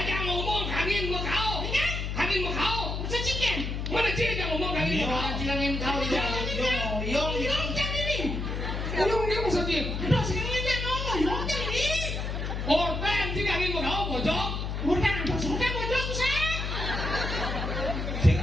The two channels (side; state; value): left; noise; hum, 3 dB below the sound